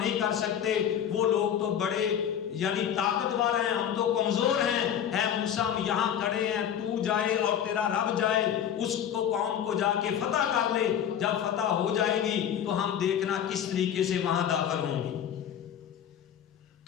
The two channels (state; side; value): quieter; right; 9.3 dB